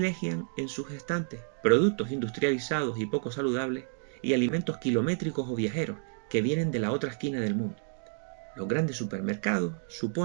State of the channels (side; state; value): left; silent; 58 dB below the other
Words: en sus estantes productos industrializados y poco saludables y alimentos kilométricos o viajeros que vienen de la otra esquina del mundo. Los grandes supermercados